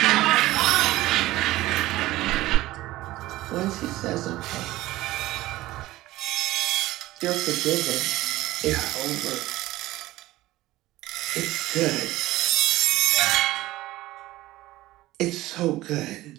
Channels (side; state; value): left; quieter; 17.1 dB